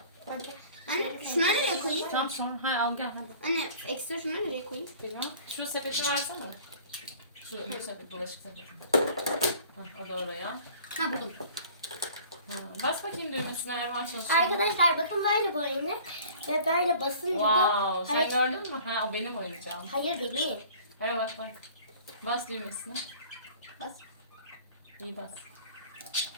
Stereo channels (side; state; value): both; inverted; correlation -0.48